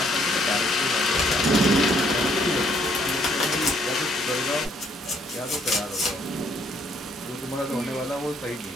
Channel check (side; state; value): both; normal; correlation 0.67